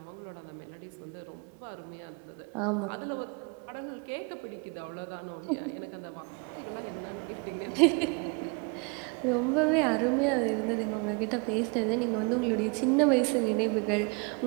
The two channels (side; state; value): left; quieter; 32.5 dB